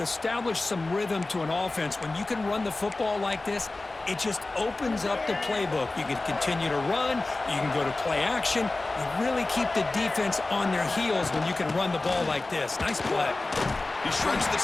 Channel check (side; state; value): right; quieter; 3.1 dB